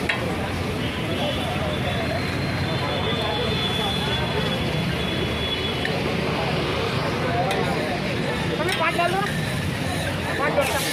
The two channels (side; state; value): both; identical; correlation 1.00